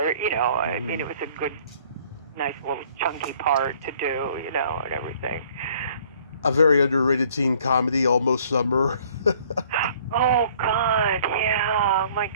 You know, I mean, it was a good, nice little chunky part to do. You know, and everything. A very underrated teen comedy, Almost Summer. Oh God, yeah. Oh my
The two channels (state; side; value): inverted; both; correlation -0.58